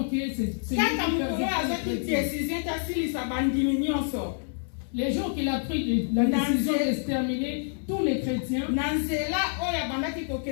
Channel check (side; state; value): right; silent; digital silence